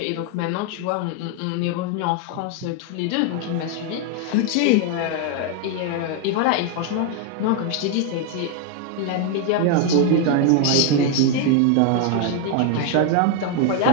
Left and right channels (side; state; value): both; different; correlation 0.01